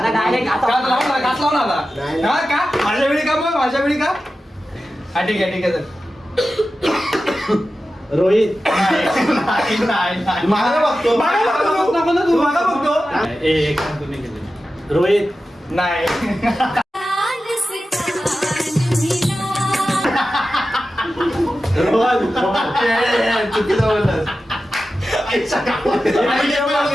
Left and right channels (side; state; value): both; normal; correlation 0.93